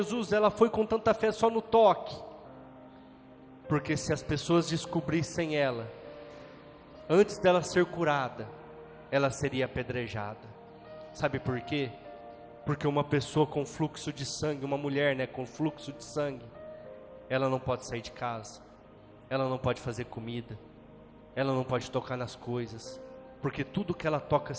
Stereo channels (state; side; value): identical; both; correlation 1.00